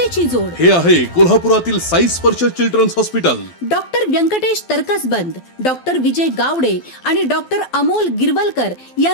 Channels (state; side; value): late; right; 12 ms